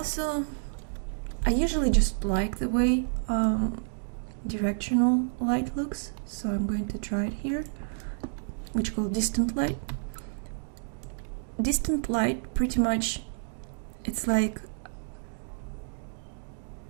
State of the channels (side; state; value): left; silent; digital silence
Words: I usually just like the way directional light looks, so I'm going to try it here, which is called distant light. Distant light, pretty much, it's like